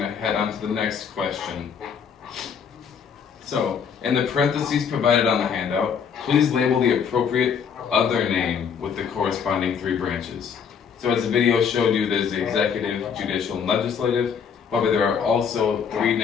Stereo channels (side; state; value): right; quieter; 7.0 dB